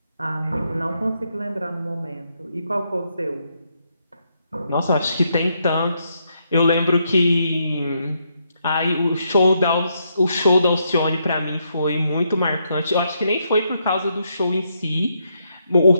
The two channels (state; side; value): inverted; both; correlation -0.78